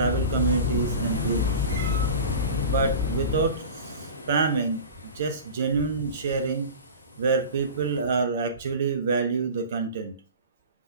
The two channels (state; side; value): inverted; both; correlation -0.35